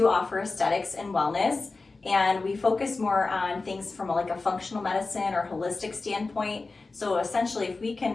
offer aesthetics and wellness, and we focus more on things from like a functional medicine or holistic standpoint. So essentially, if we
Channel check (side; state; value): right; quieter; 3.7 dB